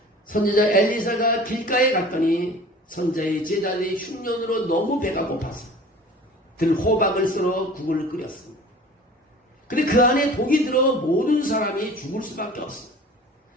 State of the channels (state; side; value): normal; both; correlation 0.43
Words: 선지자 엘리사가 길가에 갔더니 선지자의 제자들이 흉년으로 너무 배가 고파서 들호박을 썰어 국을 끓였습니다. 근데 그 안에 독이 들어 모든 사람이 죽을 수밖에 없습니다.